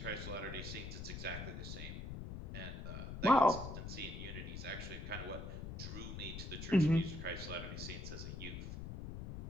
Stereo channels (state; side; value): noise; left; rumble, 7 dB below the sound